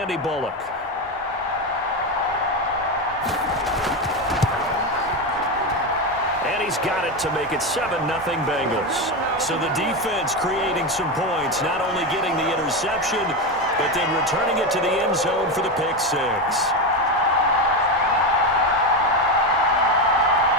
Bullock. And he's got it to make it 7-0 Bengals. So the defense creating some points, not only getting the interception, but then returning it to the end zone for the pick 6.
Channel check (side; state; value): both; normal; correlation 0.14